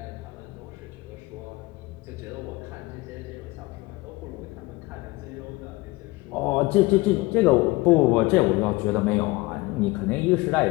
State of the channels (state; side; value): quieter; right; 21.9 dB